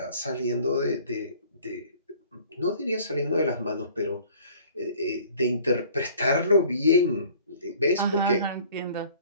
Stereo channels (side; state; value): both; inverted; correlation -0.52